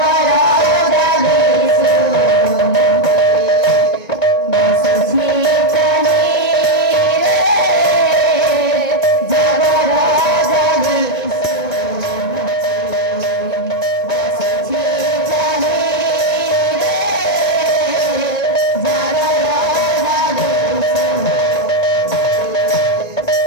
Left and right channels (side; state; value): right; late; 1.9 ms